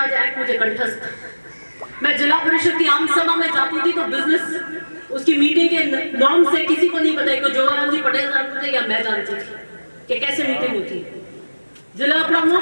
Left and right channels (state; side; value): inverted; both; correlation -1.00